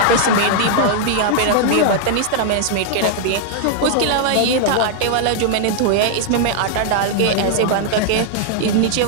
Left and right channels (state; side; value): different; both; correlation -0.01